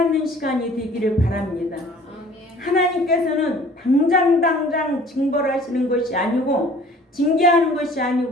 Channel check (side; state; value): both; normal; correlation 0.51